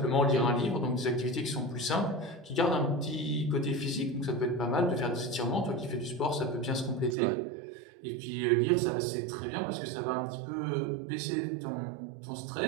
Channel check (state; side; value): drops out; left; at 7.2 s